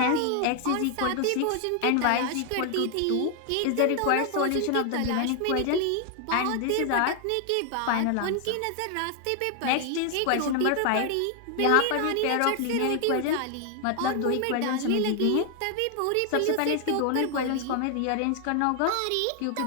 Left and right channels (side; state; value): both; different; correlation 0.00